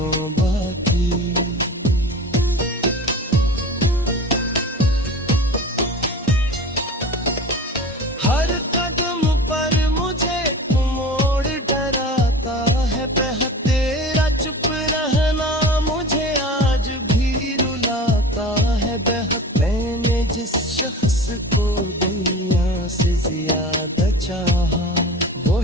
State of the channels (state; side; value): normal; both; correlation 0.36